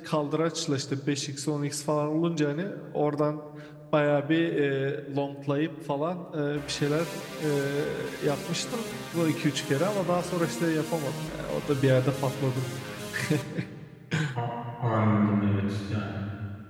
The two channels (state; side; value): identical; both; correlation 1.00